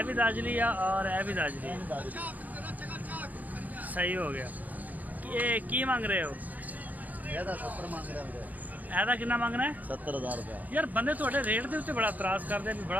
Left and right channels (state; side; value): late; left; 0.080 ms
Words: ਵੀ ਦਾਜਲੀ ਆ ਔਰ ਇਹ ਵੀ ਦਾਜਲੀ। ਸਹੀ ਹੋ ਗਿਆ। ਇਹ ਕੀ ਮੰਗ ਰਹੇ ਹੋ? ਇਹਦਾ 70 ਮੰਗ ਰਿਹਾ ਵੀਰੇ। ਇਹਦਾ ਕਿੰਨਾ ਮੰਗਣਾ ਹੈ? 70000 ਰੁਪਏ। ਯਾਰ ਬੰਦੇ ਤੁਹਾਡੇ ਰੇਟ ਦੇ ਉੱਤੇ ਬੜਾ ਇਤਰਾਜ਼ ਕਰਦੇ ਨੇ,